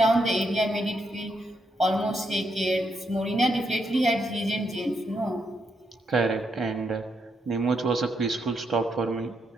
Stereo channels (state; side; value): normal; both; correlation 0.80